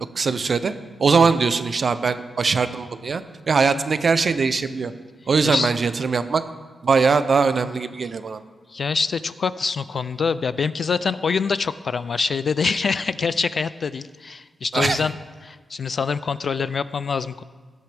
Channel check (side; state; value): both; normal; correlation 0.85